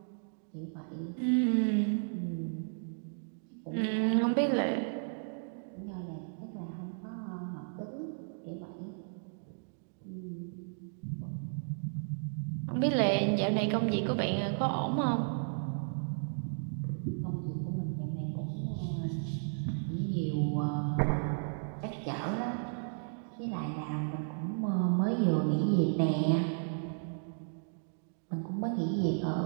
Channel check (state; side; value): silent; left; digital silence